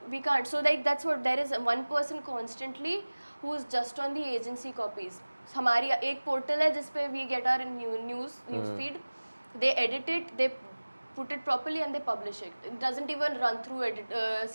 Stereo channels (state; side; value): inverted; both; correlation -1.00